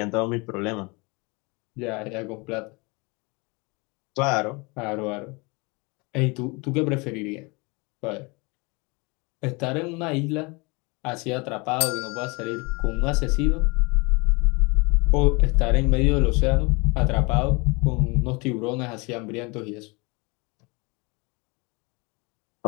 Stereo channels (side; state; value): right; quieter; 27.9 dB